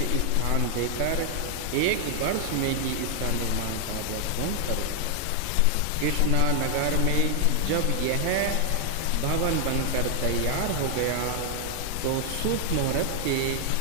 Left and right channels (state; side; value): different; both; correlation 0.00